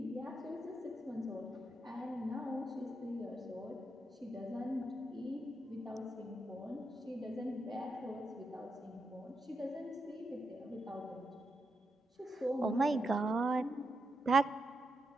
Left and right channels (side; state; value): both; normal; correlation 0.83